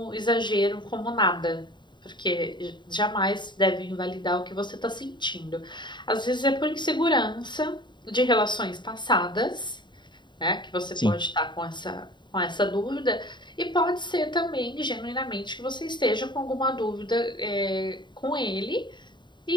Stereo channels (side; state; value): right; late; 0.22 ms